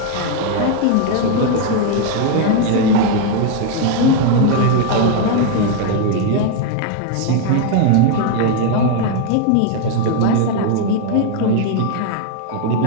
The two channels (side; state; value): both; different; correlation 0.01